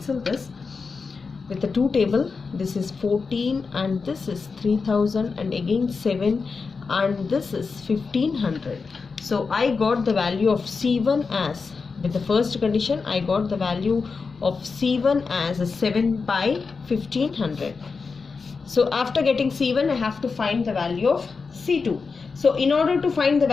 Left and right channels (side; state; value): right; quieter; 4.8 dB